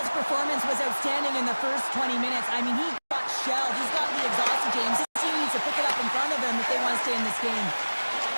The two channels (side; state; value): both; inverted; correlation -1.00